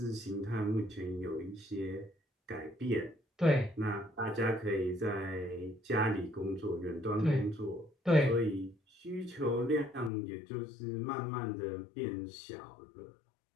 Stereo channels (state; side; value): drops out; right; at 10.1 s